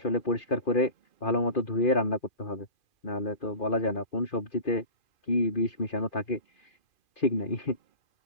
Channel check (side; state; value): right; late; 2.4 ms